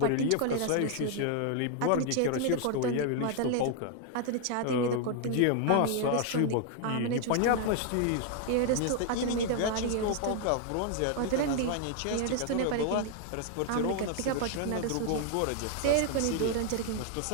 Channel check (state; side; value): different; both; correlation 0.00